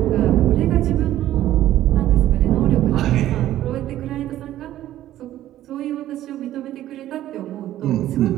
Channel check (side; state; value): left; quieter; 13.3 dB